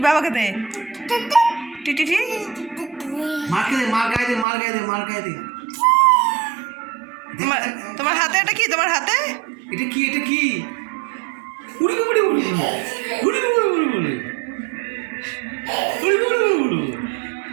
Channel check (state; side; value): drops out; left; at 4.5 s